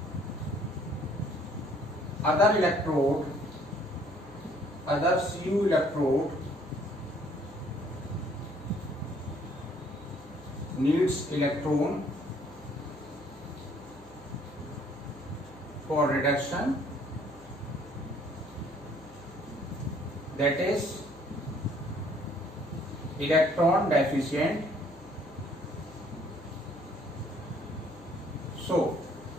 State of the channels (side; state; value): left; noise; hum, 21 dB below the sound